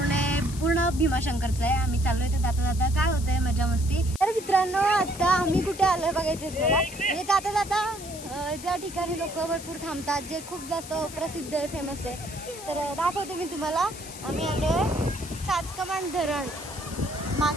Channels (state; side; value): noise; left; hiss, 13 dB below the sound